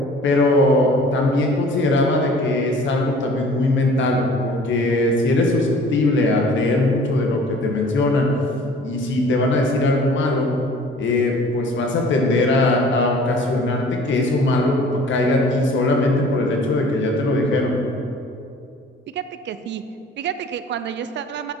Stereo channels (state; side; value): normal; both; correlation 0.49